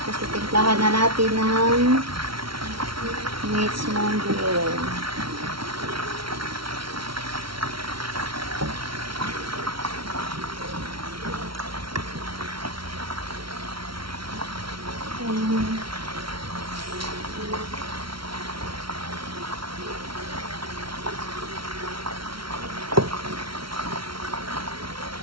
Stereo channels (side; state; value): left; late; 0.74 ms